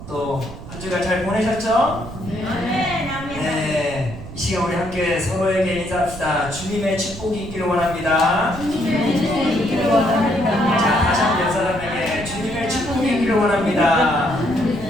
또 한 주간 잘 보내셨죠? 네, 이 시간 우리 함께 서로에게 인사합시다. 주님의 축복이 있기를 원합니다. 자, 다시 한번 옆 사람에게 주님의 축복이 있기를 원합니다.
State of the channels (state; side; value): noise; right; rumble, 13 dB below the sound